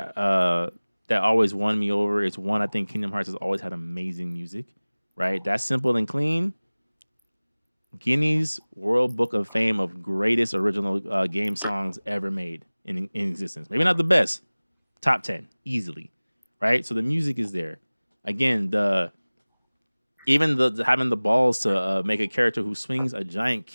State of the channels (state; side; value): inverted; both; correlation -1.00